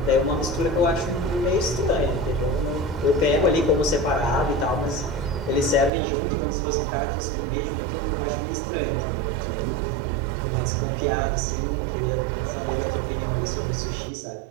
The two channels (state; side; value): drops out; left; at 5.9 s